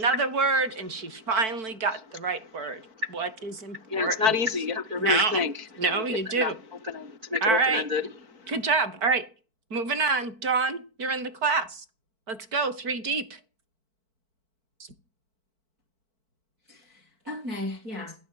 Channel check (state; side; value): late; left; 4.5 ms